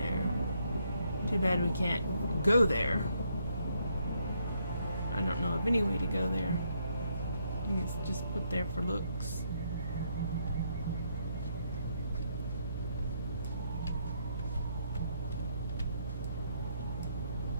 Too bad we can't go there. I don't know of any way to go there. I think it's just put there for looks.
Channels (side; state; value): both; inverted; correlation -0.74